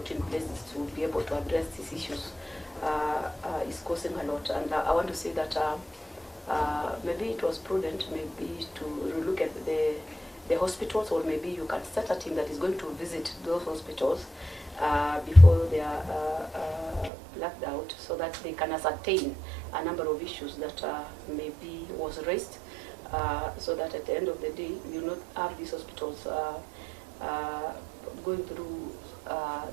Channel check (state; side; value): drops out; left; at 17.1 s